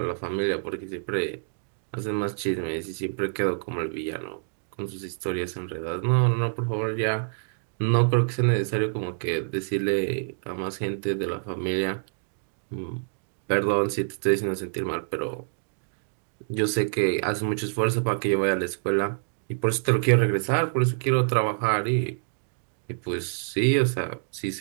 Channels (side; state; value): left; silent; digital silence